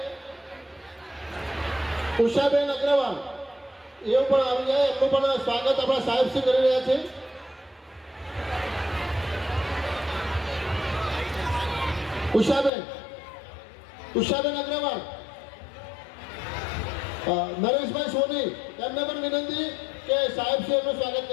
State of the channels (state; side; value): drops out; right; at 12.7 s